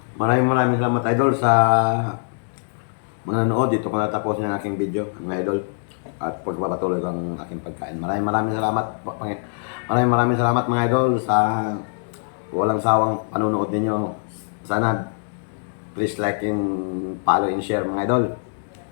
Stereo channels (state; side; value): silent; right; digital silence